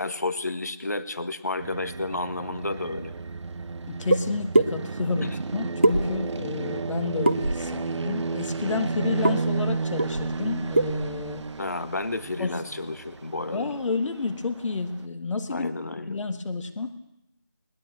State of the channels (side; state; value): both; inverted; correlation -0.74